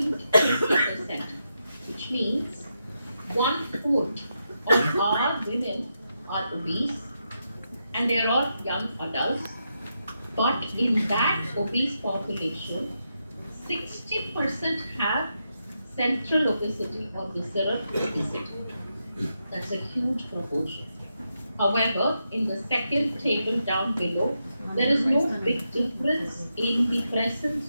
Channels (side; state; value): both; inverted; correlation -0.85